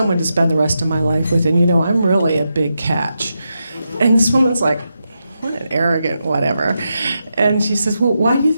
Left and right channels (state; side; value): inverted; both; correlation -0.86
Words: to spend the rest of my life with, and you know, I'm really a big catch. And this woman's like, what an arrogant whatever. And she says, well, why do you